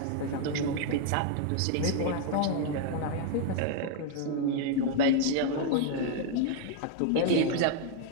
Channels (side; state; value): both; different; correlation 0.00